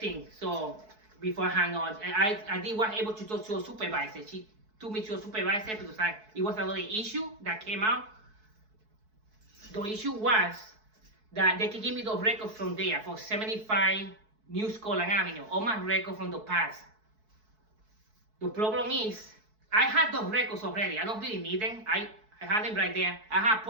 So before I hang on, I was able to talk to a supervisor. She took me to a supervisor because it was another issue that came out. The issue was that they could give me the records from there, for 75 New Scotland Avenue, all my records from the past. The problem is, I had those records already. I don't really need them. I had them right there. I have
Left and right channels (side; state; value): left; late; 4.6 ms